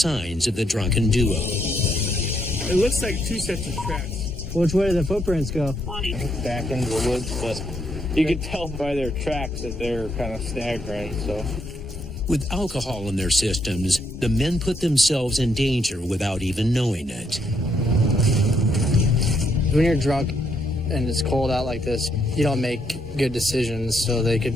of the drunken duo. It looks like two sets of tracks. Which way do the footprints go? Back into the woods, but you could tell by their tracks that they're kind of staggering, so. With alcohol in their systems, the men put themselves in danger without even knowing it. When you're drunk and it's cold out like this, you don't make good decisions. So they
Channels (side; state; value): both; normal; correlation 0.75